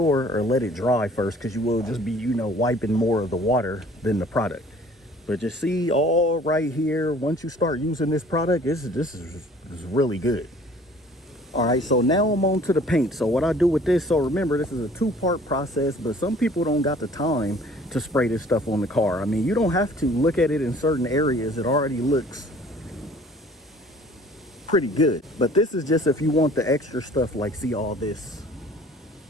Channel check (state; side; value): normal; both; correlation 0.52